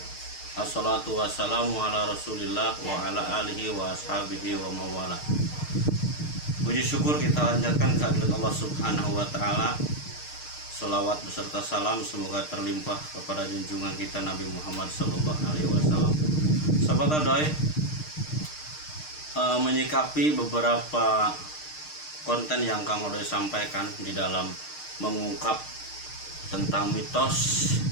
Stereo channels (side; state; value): right; late; 6.6 ms